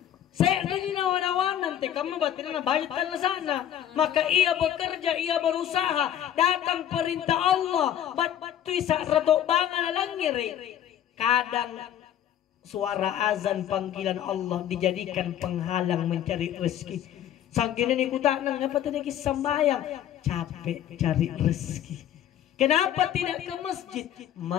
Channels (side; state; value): right; quieter; 10.6 dB